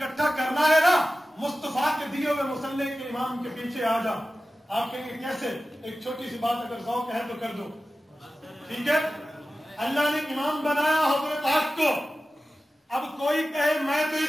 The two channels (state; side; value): normal; both; correlation 0.95